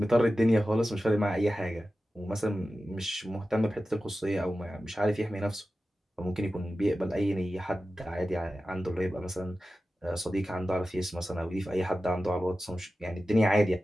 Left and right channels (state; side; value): normal; both; correlation 0.94